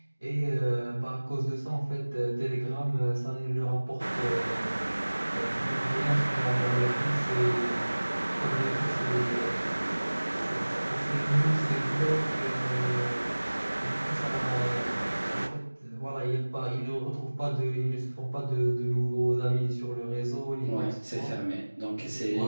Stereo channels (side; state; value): both; inverted; correlation -1.00